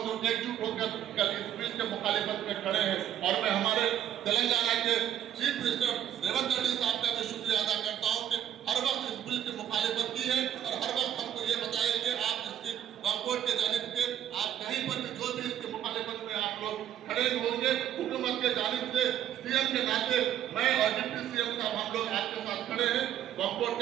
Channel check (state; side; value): quieter; left; 10.7 dB